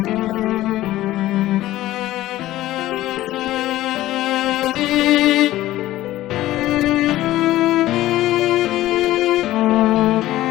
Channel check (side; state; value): right; quieter; 15.5 dB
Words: la ayuda de sus buenas manos. Su dulce aliento mis velas debe hinchar, o mi plan fracasará, que no era otro sino agradar.